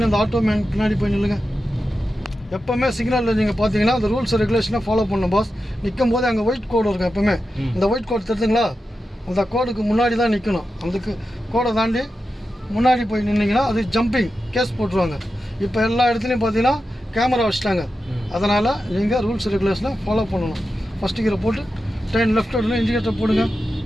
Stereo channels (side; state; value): both; normal; correlation 0.91